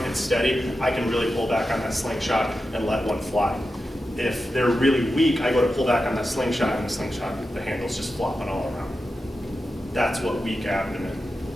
and steady, I can really pull back on that slingshot and let one fly. If they're really weak, I go to pull back on that slingshot and the handle's just flopping all around. That's what a weak abdomen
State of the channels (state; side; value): normal; both; correlation 0.91